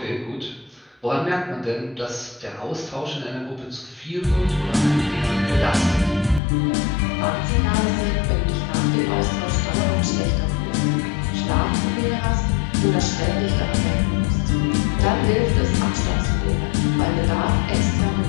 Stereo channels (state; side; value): drops out; right; at 6.4 s